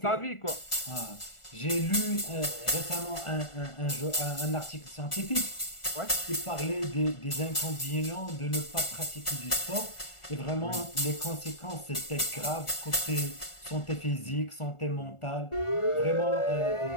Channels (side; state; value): right; late; 1.4 ms